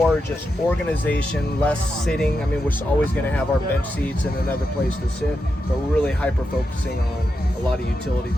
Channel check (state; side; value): normal; both; correlation 0.87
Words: just organization, less sitting. I mean, we're always gonna have our bench seats and another place to sit, but we're really hyper focusing on a lot of utility